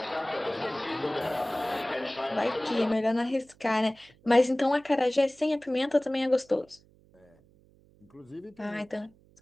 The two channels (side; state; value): right; noise; hum, 29 dB below the sound